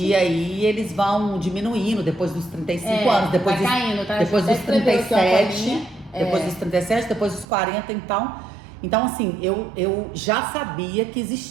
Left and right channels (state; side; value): drops out; left; at 7.5 s